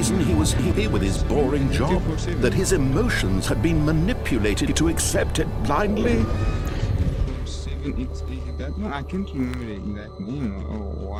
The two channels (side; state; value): both; identical; correlation 1.00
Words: he was here with his boring job? That his emotions had been manipulated to accept it blindly? That one? I can't remember the exact name or